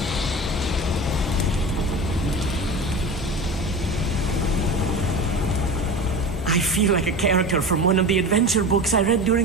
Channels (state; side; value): normal; both; correlation 0.30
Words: I feel like a character from one of the adventure books I read